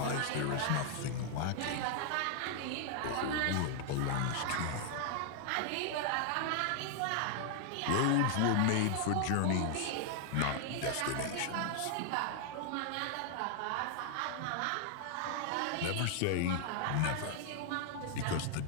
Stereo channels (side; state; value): both; different; correlation 0.00